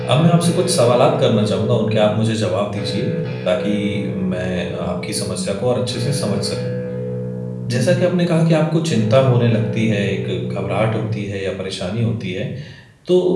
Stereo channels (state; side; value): identical; both; correlation 1.00